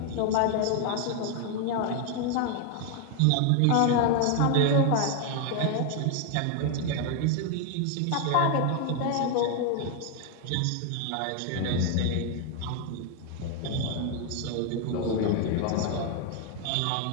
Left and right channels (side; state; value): both; different; correlation 0.01